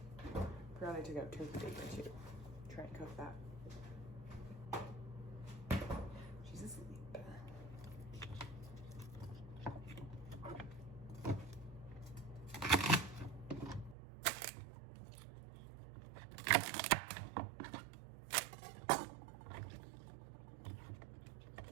Forgot I took out turkey bacon too. Try and cook that. She's asleep.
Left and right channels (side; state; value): left; drops out; at 14.0 s